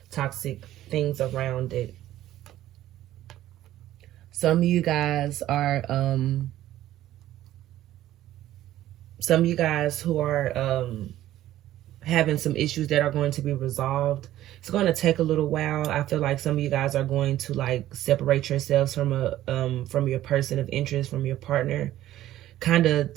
toxic things around it. Some of you guys are some of you guys who are having some issues that are going to be resolved. It's going to take a little while. I feel like some of you guys are going to like separate yourselves from your person of interest, from your partner. Kind of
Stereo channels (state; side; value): quieter; left; 13.7 dB